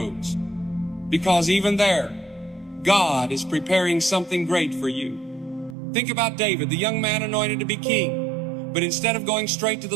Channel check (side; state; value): left; drops out; at 5.8 s